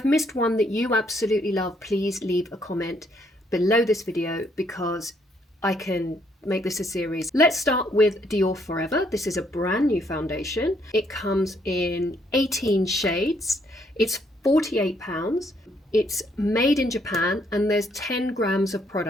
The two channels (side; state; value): both; normal; correlation 0.70